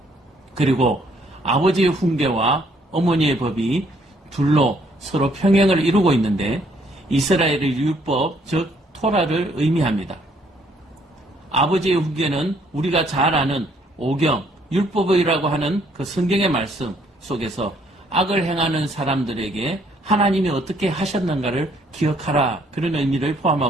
그리고 아버지의 훈계와 어머니의 법이 둘로 서로 평행을 이루고 있는데 이스라엘의 율법, 즉 토라를 의미합니다. 아버지의 훈계는 우리가 잘 아는 오경, 율법이라고 하는 그 성경의 말씀 속에서 악을 행하는 사람들에게 하나님이 어떻게 하셨는가를 기억하라, 그런 의미를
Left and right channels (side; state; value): both; normal; correlation 0.66